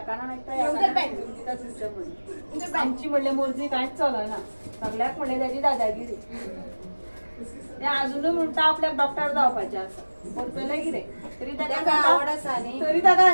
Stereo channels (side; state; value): both; inverted; correlation -1.00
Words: काना नाही तर या काना आमची म्हणले मुलगी काहीच चालू ना सगळ्यात म्हणले त्याची दादागिरी ते अजून म्हणता आपल्या डॉक्टर जावपाचे असं बोलतोय की रे तरी त्याला आवड असा नाही तरी त्या